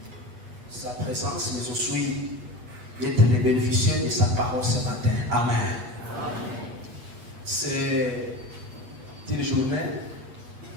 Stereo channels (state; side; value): late; left; 8.4 ms